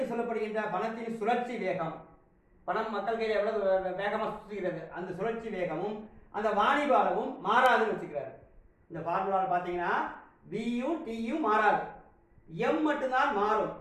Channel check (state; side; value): identical; both; correlation 1.00